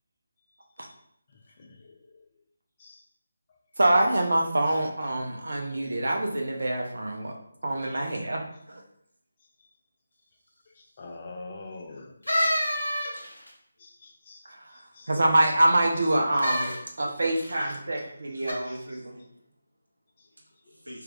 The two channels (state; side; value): inverted; both; correlation -0.93